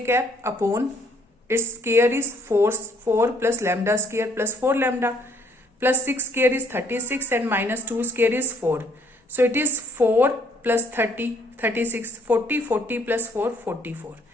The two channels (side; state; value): both; normal; correlation 0.65